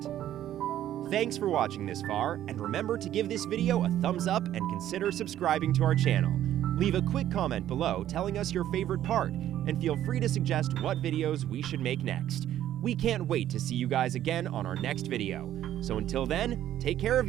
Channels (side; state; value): left; quieter; 12.0 dB